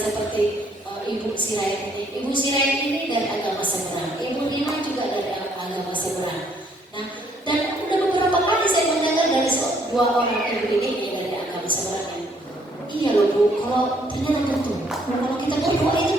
Ibu Sirait ini. Ibu Sirait ini dari agama seberang. Ibu Nina juga dari agama seberang. Nah, dan udah beberapa kali saya mendengar dari dua orang ibu ini dari agama seberang. Iya loh Bu, kalau ternyata betul. Kalau kita berdoa itu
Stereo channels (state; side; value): normal; both; correlation 0.67